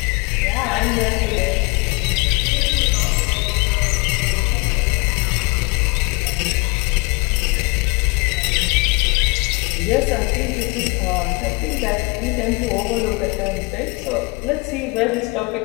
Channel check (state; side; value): quieter; right; 28.5 dB